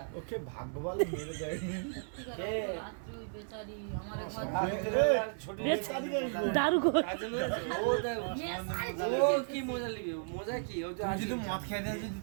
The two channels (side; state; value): left; silent; digital silence